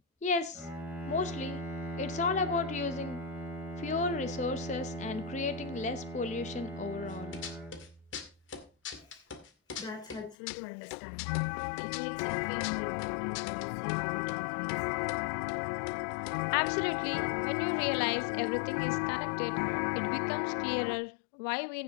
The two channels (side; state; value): right; drops out; at 10.4 s